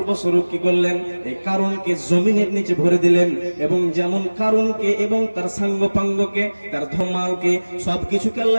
বস্বরূপ কি করলেন, এই কারণকে জমিনের নিচে ভরে দিলেন। এবং যেমন কারণকে এবং তার সাঙ্গপাঙ্গকে, তার ধমালকে, সবকিছুকে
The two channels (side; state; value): both; inverted; correlation -1.00